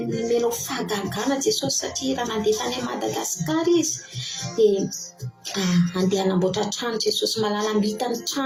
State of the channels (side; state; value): both; identical; correlation 1.00